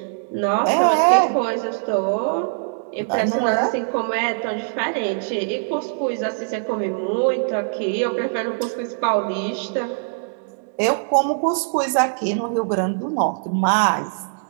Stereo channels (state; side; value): silent; left; digital silence